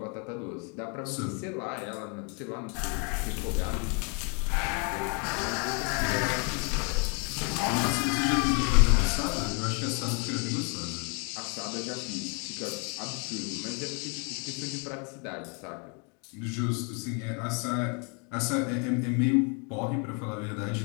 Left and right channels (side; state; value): right; quieter; 35.9 dB